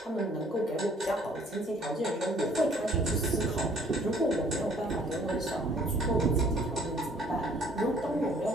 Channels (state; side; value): normal; both; correlation 0.59